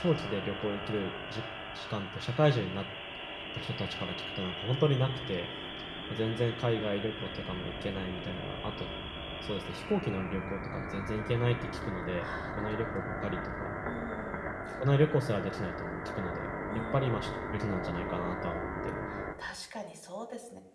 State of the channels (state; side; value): identical; both; correlation 1.00